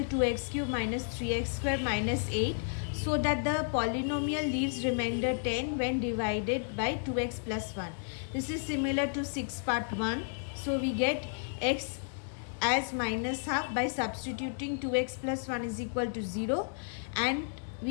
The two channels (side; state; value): right; silent; digital silence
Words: 2x cube minus 3x square minus 8 so that the polynomial leaves remainder 10 when divided by 2x plus 1? This is similar to 6 part 1. So we get x as minus half by substituting 2x plus 1 is equal to 0, and